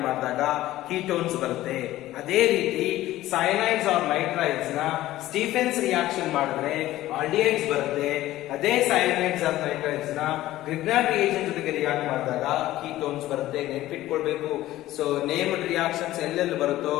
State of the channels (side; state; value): right; quieter; 15.4 dB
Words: ಮಾಡಿದಾಗ ಕೀಟೋನ್ಸ್ ಬರುತ್ತೆ. ಅದೇ ರೀತಿ ಸೈನೈಡ್ಸ್ ಆರ್ ನೈಟ್ರೈಡ್ಸ್ ನ ಸ್ಟೀಫೆನ್ಸ್ ರಿಯಾಕ್ಷನ್ ಮಾಡಿದ್ರೆ ಆಲ್ಡಿಹೈಡ್ಸ್ ಬರುತ್ತೆ. ಅದೇ ಸೈನೈಡ್ಸ್ ಆರ್ ನೈಟ್ರೈಡ್ಸ್ ನ ಗ್ರಿಗ್ನಾರ್ಡ್ ರಿಯೇಜೆಂಟ್ ಜೊತೆಗೆ ರಿಯಾಕ್ಟ್ ಮಾಡಿದಾಗ ಕೀಟೋನ್ಸ್ ಬರುತ್ತೆ. ನೆನ್ಪಿಟ್ಕೊಳ್ಬೇಕು. ಸೊ ನೇಮ್ಡ್ ರಿಯಾಕ್ಷನ್ಸ್ ಎಲ್ಲೆಲ್ಲಿ ಬರುತ್ತೋ